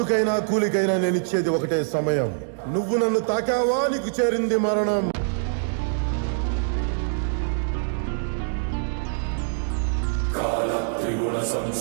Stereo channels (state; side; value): silent; left; digital silence